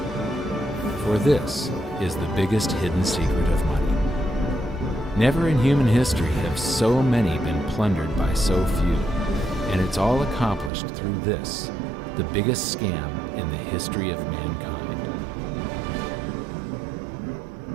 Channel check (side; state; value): left; drops out; at 10.7 s